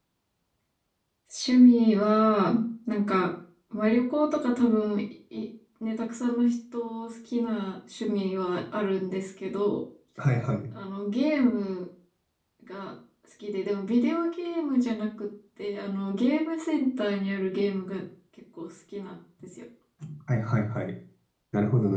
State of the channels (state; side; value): identical; both; correlation 1.00